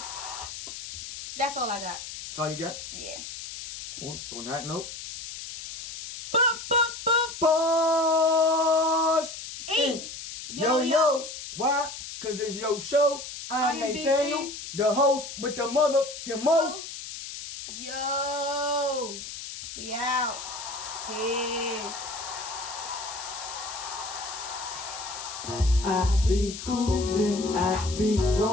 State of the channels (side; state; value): left; noise; hiss, 10 dB below the sound